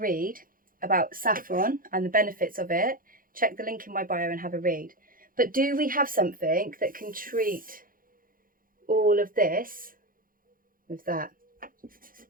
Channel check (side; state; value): left; late; 0.41 ms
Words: about saffron and the benefits of it, check the link in my bio and have a read. But do we have something that can treat all of this with that?